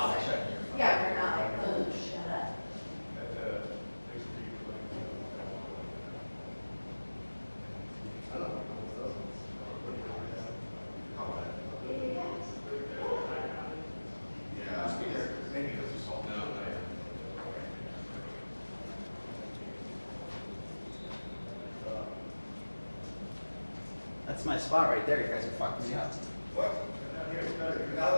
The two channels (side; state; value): both; inverted; correlation -1.00